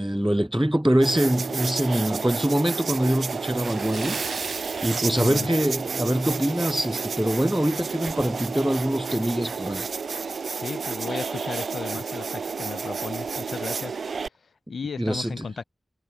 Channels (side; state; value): both; normal; correlation 0.96